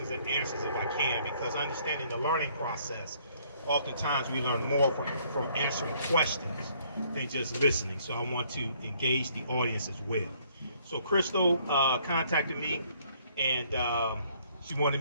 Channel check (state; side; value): inverted; both; correlation -0.64